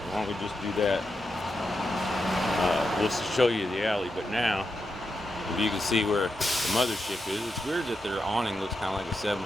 don't we just do that? We'll show you the alley. But now, if you can see where the mothership is, it's weird that their awning looks kind of like a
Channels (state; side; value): normal; both; correlation 0.86